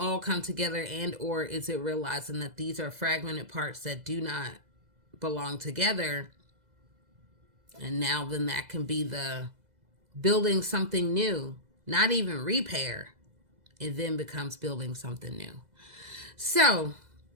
come together, and or is it realizing that these are fragmented parts that do not belong together? And now then that can be the building something new, not even repair. It then becomes building something new. So,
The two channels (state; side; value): late; left; 2.0 ms